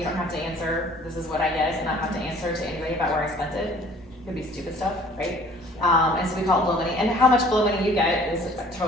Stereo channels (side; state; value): both; normal; correlation 0.53